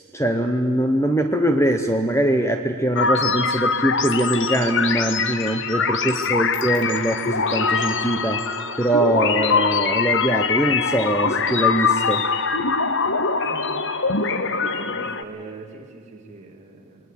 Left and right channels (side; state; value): both; normal; correlation 0.35